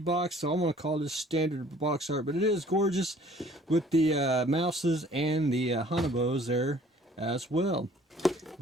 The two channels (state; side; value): normal; both; correlation 0.55